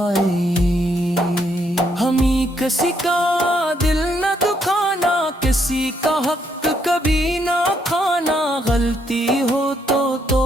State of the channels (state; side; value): normal; both; correlation 0.73